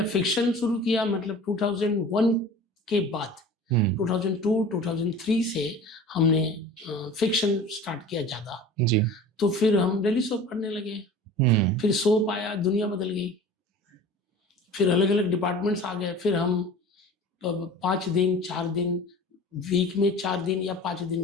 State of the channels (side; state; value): both; normal; correlation 0.40